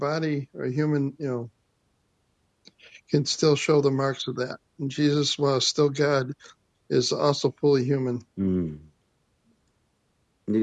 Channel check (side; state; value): both; identical; correlation 1.00